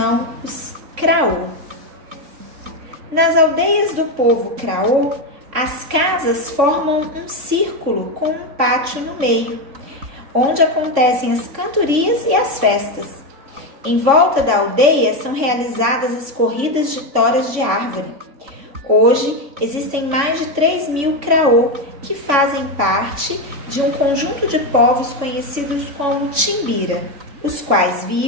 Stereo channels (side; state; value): left; late; 3.5 ms